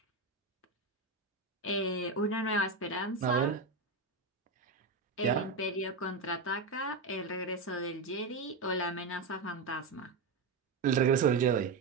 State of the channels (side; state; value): left; quieter; 3.8 dB